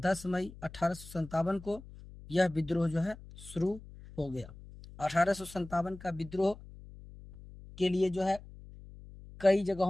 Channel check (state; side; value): noise; left; hum, 17 dB below the sound